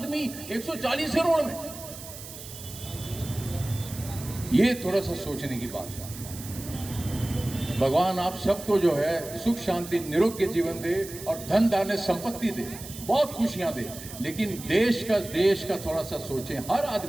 140 करोड़ में। ये थोड़ा सा सोचने की बात है। भगवान आप सबको जो है सुख शांति निरोग्य जीवन दे और धन धान्य संपत्ति दे, बहुत खुशियां दे। लेकिन देश का थोड़ा सा सोचें, हर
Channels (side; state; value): right; noise; hiss, 13 dB below the sound